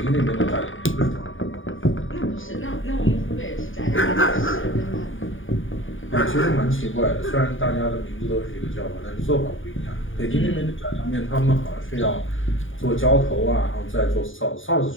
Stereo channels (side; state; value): right; late; 0.57 ms